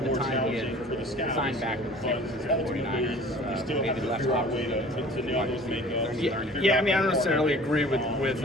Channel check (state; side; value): normal; both; correlation 0.46